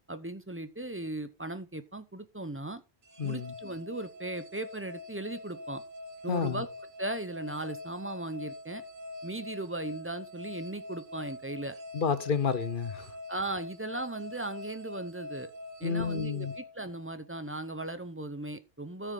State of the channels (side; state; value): both; normal; correlation -0.13